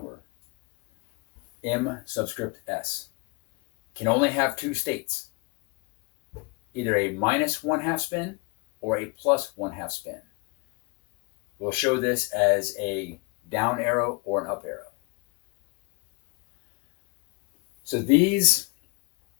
M subscript S. Can only have 2 states, either a minus 1/2 spin or a plus 1/2 spin. We'll show this as a down arrow or an up arrow. So these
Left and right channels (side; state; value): right; quieter; 30.0 dB